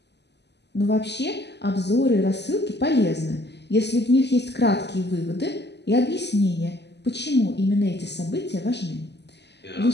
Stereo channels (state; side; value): late; right; 0.50 ms